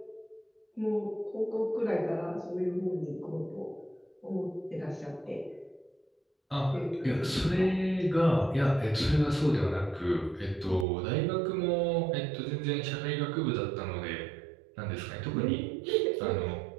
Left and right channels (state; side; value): drops out; left; at 10.9 s